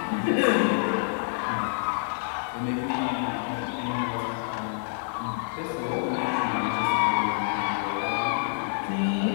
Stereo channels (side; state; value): right; silent; digital silence